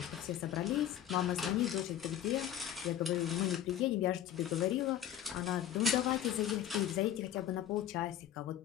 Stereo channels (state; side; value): quieter; right; 11.0 dB